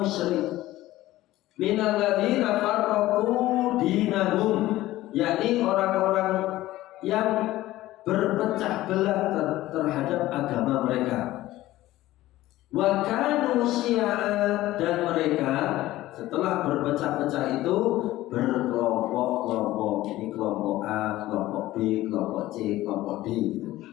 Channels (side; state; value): right; quieter; 16.1 dB